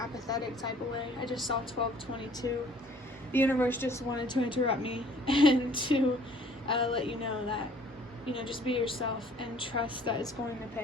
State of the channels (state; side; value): normal; both; correlation 0.55